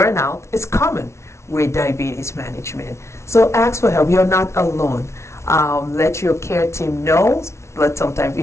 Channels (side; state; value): right; late; 0.13 ms